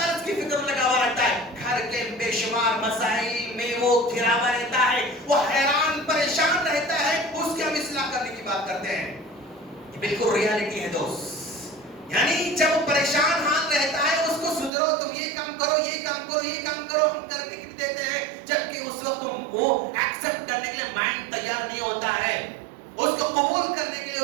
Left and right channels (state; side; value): drops out; left; at 14.7 s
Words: کی فکر میں لگا ہوا رہتا ہے. گھر کے بے شمار مسائل میں وہ گھرا ہوا رہتا ہے، وہ حیران پریشان رہتا ہے. اس کی ہم اصلاح کرنے کی بات کرتے ہیں. یہ بالکل ریالٹی ہے دوست. یعنی جب وہ پریشان حال رہتا ہے اس کو سدھرو، تم یہ کام کرو، یہ کام کرو، یہ کام کرو، ہم کرنے کے لیے دیتے ہیں، جبکہ اس وقت وہ ایکسپٹ کرنے کے لیے مائنڈ تیار نہیں ہوتا ہے. اس کو قبول کرنے کے لیے